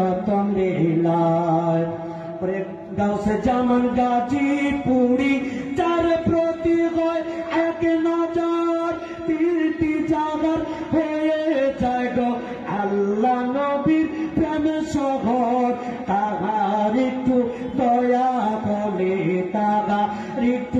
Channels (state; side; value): identical; both; correlation 1.00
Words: বিলায়। গাউসে জামান গাজীপুরি যার প্রতি হয় এক নজর, তিনটি জাগার হয়ে যায় গো আল্লাহ নবীর প্রেম শহর। তাহার একটু দয়া হলে, তাহার